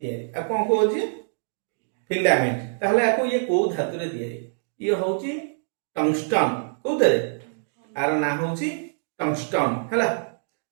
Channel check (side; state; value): left; silent; digital silence